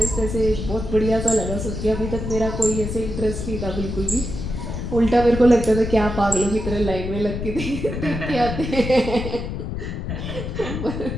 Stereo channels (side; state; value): left; noise; rumble, 5 dB below the sound